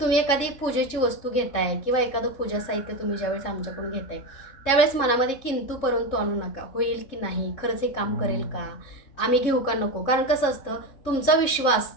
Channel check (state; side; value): late; right; 3.7 ms